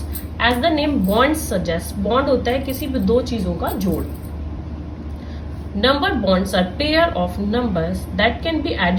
as the name bond suggest, bond होता है किसी भी दो चीजों का जोड़। Number bonds are pair of numbers that can be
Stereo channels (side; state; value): both; identical; correlation 1.00